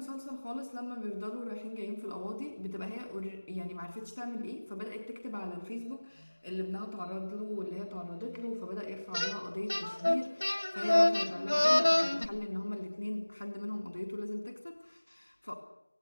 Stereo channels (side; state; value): both; inverted; correlation -1.00